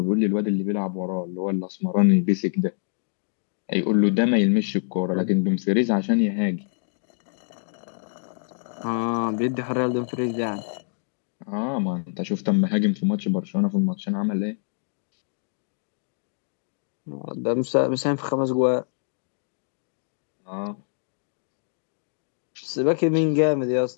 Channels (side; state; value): right; silent; 61 dB below the other